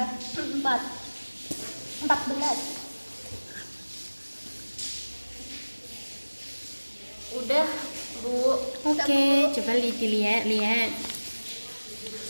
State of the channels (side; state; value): both; inverted; correlation -1.00